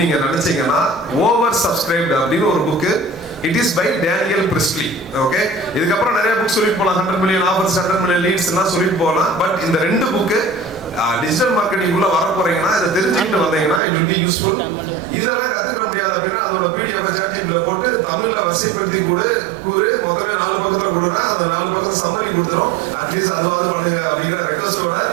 நீங்க நினைச்சீங்கன்னா ஓவர் சப்ஸ்கிரைப்டு அப்படின்னு ஒரு book. It is by Daniel Priestley. Okay, இதுக்கப்புறம் நிறைய புக் சொல்லிட்டு போகலாம், 100 million ஆஃபர்ஸ், 100 million லீட்ஸ் எல்லாம் சொல்லிட்டு போகலாம். பட் இந்த 2 புக்கு டிஜிட்டல் மார்க்கெட்டிங் உள்ள வர போறீங்கன்னா இதை தெரிஞ்சுக்கிட்டு வந்தீங்கன்னா இட் வில் பி யூஸ்ஃபுல். இதெல்லாம் கத்துக்கிற முடியாது அப்படின்னா அதோட பிடிஎஃப் சாட்ஜிபில போட்டு தமிழ்ல வரிசைப்படுத்தி கூறு மொத்தமே 4 பக்கத்துல கொடுனா அந்த 4 பக்கத்துல சம்மரி கொடுத்துரும். அட்லீஸ்ட் அதுவாது பண்ணுங்க அப்படிங்கிற ரெக்வஸ்டோட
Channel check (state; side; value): drops out; left; at 13.8 s